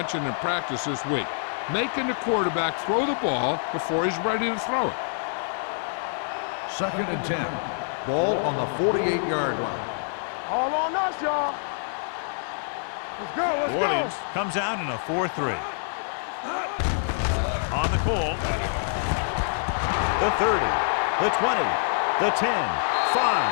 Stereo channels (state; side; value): silent; right; 61 dB below the other